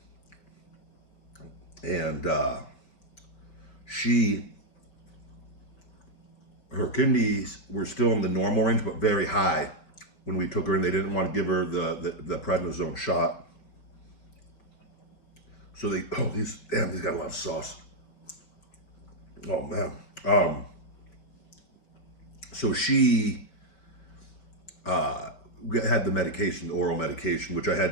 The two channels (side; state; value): right; late; 5.0 ms